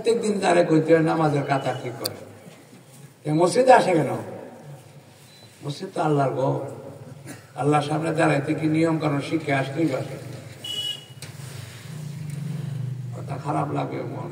দিন তারে কইতে হয় নামাজের কাতা ঠিক করে। মসজিদে আসে কেন? মসজিদ তো আল্লাহর ঘর। আল্লাহর সামনে দাঁড়াইতে কি নিয়ম কারণ শিখে আসতেই পারে। কথা খারাপ লাগে,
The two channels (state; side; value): identical; both; correlation 1.00